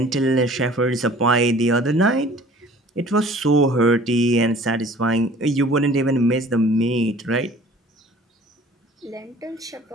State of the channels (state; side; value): normal; both; correlation 0.50